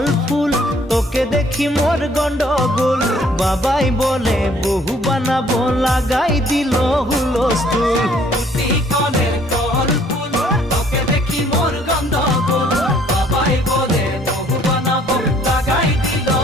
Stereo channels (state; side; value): normal; both; correlation 0.61